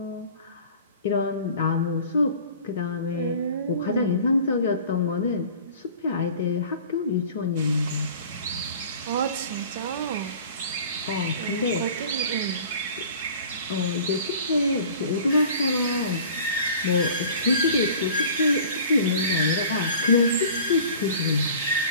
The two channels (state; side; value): inverted; both; correlation -0.44